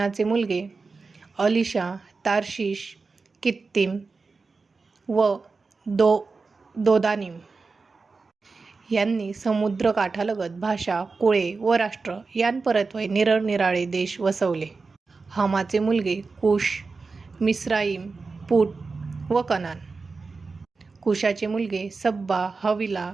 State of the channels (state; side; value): quieter; left; 4.2 dB